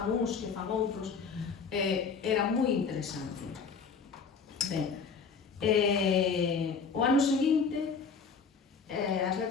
uns, que fan outros, era moi interesante. Ben, o ano seguinte, as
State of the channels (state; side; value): quieter; right; 5.5 dB